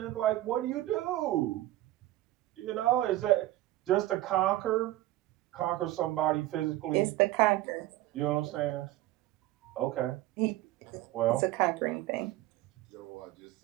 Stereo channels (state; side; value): quieter; left; 16.1 dB